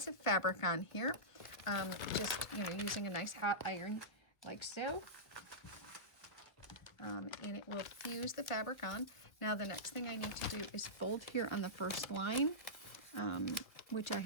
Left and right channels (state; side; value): late; right; 1.5 ms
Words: of fabric on here, just using a nice hot iron like so. And it will fuse the fabric on. Now the next thing I need to do is fold here on the first line, which I